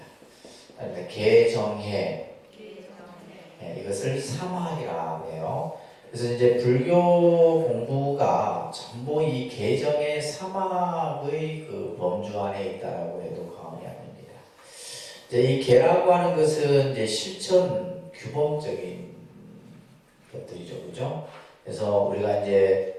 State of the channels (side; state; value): both; identical; correlation 1.00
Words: 그러니까 계정해, 이것을 사막이라고 해요. 그래서 이제 불교 공부가 전부 이 계정의 사막의 그 범주 안에 있다라고 해도 과언이 아닙니다. 이제 이 계라고 하는 것은 이제 실천 규범적인 것들이죠, 그죠? 그래서 우리가